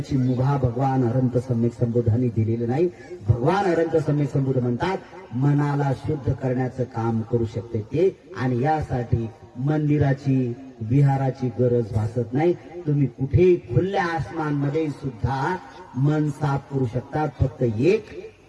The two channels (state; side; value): identical; both; correlation 1.00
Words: मुभा भगवान अनंत सम्यक संबोधांनी दिलेली नाही. भगवान अनंत सम्यक संबोध म्हणतात, मनाला शुद्ध करण्याचं काम करू शकते ते. आणि यासाठी मंदिराची, विहाराची गरज भासत नाही. तुम्ही कुठेही खुल्या आसमानमध्ये सुद्धा मन साफ करू शकता. फक्त एक,